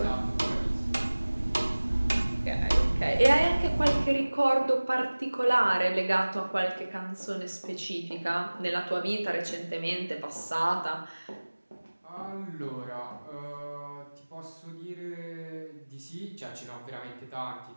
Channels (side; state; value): both; inverted; correlation -1.00